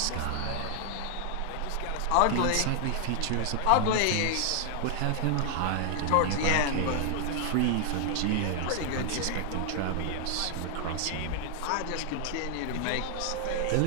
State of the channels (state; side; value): different; both; correlation 0.00